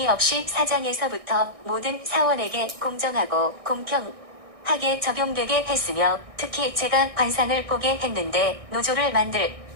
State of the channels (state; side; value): late; left; 1.6 ms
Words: 없이 사장에서부터 모든 사원에게 공정하고 공평하게 적용되게 했으며 특히 제가 관상을 보게 했는데 노조를 만들